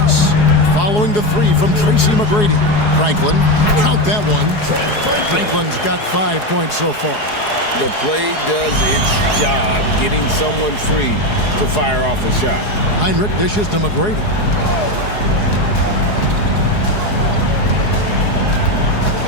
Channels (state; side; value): late; right; 4.8 ms